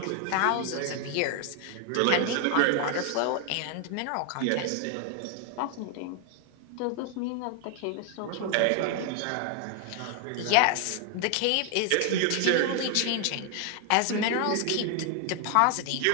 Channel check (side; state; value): both; different; correlation 0.00